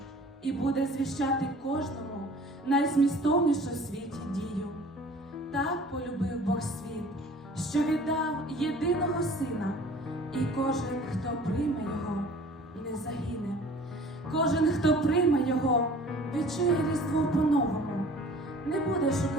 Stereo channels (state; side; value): normal; both; correlation 0.48